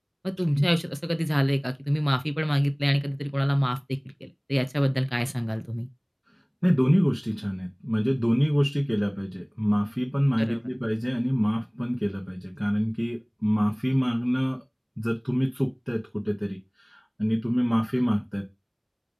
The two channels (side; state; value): both; identical; correlation 1.00